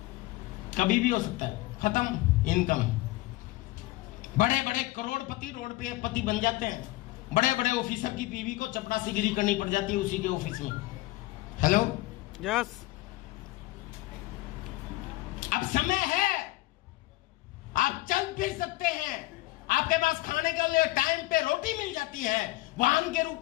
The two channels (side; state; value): right; quieter; 19.2 dB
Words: कभी भी हो सकता है, खत्म इनकम। बड़े बड़े करोड़पति रोड पे पति बन जाते हैं। बड़े बड़े ऑफिसर की बीवी को चपरासीगिरी करनी पड़ जाती है उसी के ऑफिस में। हेलो, यस, अब समय है, आप चल फिर सकते हैं। आपके पास खाने के लिए टाइम पे रोटी मिल जाती है, वाहन के रूप